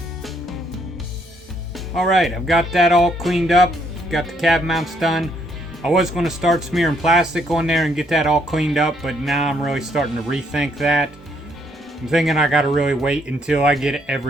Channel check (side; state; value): both; normal; correlation 0.70